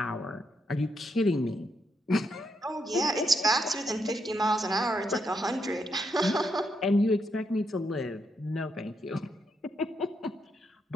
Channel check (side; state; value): both; normal; correlation 0.80